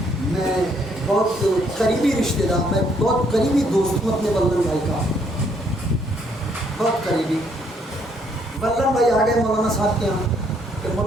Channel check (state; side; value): normal; both; correlation 0.69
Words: میں بہت قریبی رشتہ دار، میں بہت قریبی دوست ہوں اپنے بلدن بھائی کا، بہت قریبی۔ بلدن بھائی آ گئے مولانا صاحب کے یہاں کہ